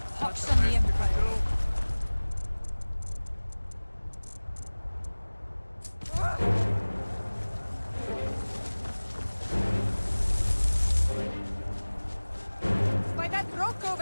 Pox on the Empire. By that rock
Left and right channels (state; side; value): inverted; both; correlation -1.00